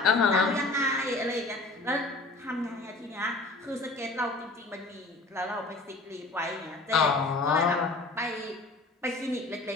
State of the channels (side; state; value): right; quieter; 3.2 dB